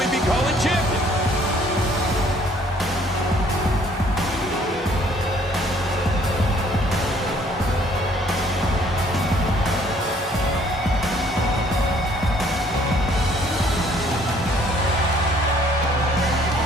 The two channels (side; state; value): both; normal; correlation 0.61